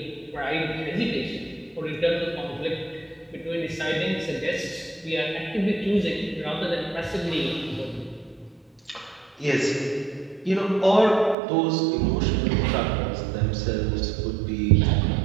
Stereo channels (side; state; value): left; drops out; at 11.4 s